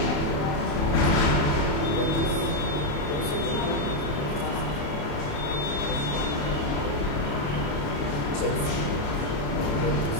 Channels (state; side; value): late; right; 28 ms